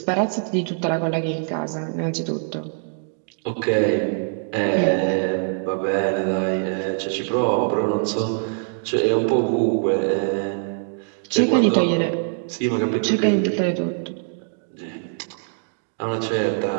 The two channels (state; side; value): silent; left; digital silence